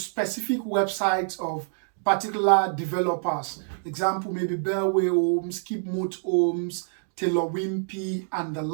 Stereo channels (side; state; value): left; silent; digital silence